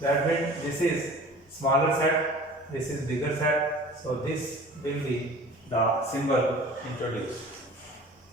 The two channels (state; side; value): normal; both; correlation 0.43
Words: That means this is smaller set, this is bigger set. So this will be the symbol introduced.